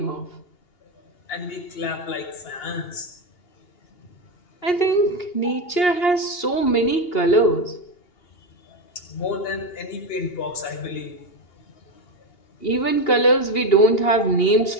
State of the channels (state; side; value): late; right; 2.8 ms